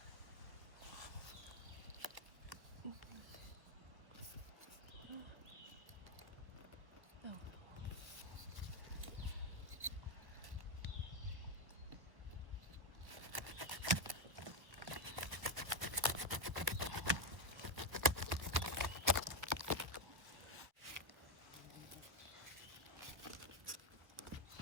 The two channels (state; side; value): late; left; 1.3 ms